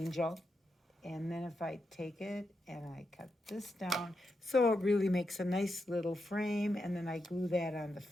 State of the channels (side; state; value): both; normal; correlation 0.85